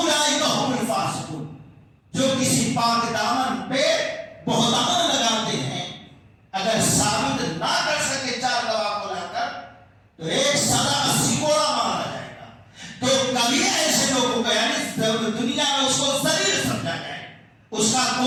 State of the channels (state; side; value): identical; both; correlation 1.00